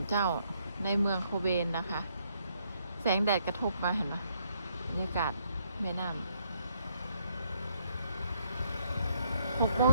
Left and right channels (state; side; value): inverted; both; correlation -0.72